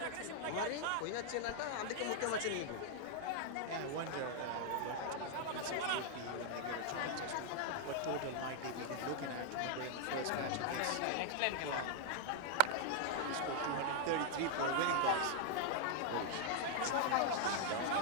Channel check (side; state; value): both; different; correlation 0.00